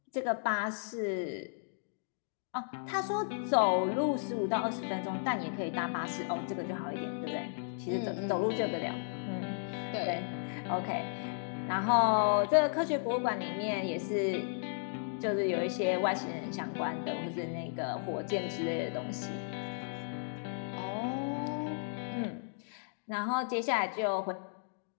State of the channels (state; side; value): silent; right; digital silence